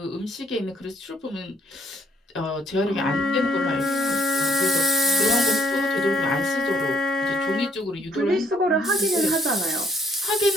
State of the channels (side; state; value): both; normal; correlation 0.64